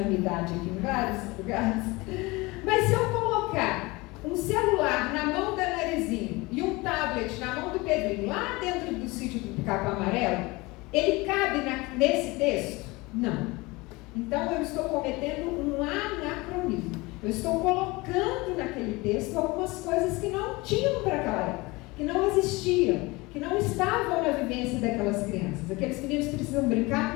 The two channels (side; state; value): right; quieter; 23.2 dB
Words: a minha idade aqui em vários lugares, mas se eu colocar um celular na mão da Narizinho e um tablet na mão do Pedrinho, lá dentro do sítio do Capão Amarelo, ele cabe nesse texto? Não. Então eu estou cometendo um anacronismo. Eu estou colocando naquele texto algumas coisas que não tinham para aquela época, que não existiam, que não estavam na vivência daquelas crianças. Aqueles meninos precisam brincar